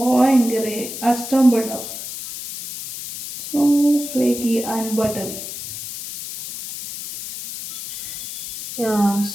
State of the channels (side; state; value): left; noise; hiss, 9 dB below the sound